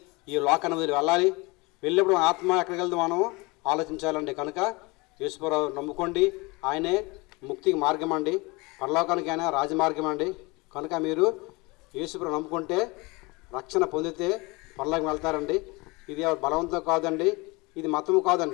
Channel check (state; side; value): quieter; right; 25.3 dB